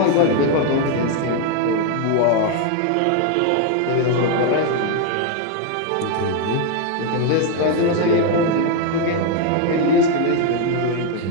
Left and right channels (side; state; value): both; different; correlation 0.01